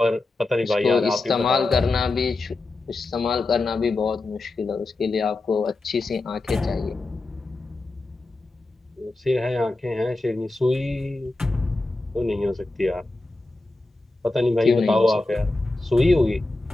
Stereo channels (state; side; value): quieter; right; 3.0 dB